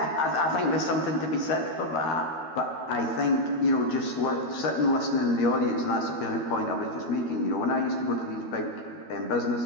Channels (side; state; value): right; late; 13 ms